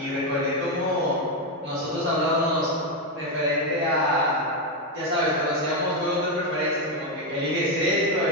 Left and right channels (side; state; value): both; normal; correlation 0.06